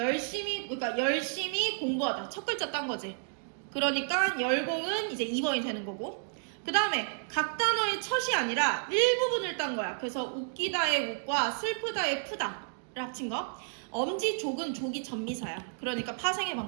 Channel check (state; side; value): silent; left; digital silence